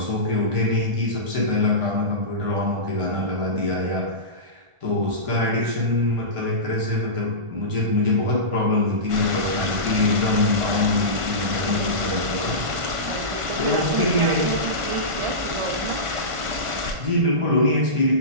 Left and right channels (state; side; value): late; left; 1.5 ms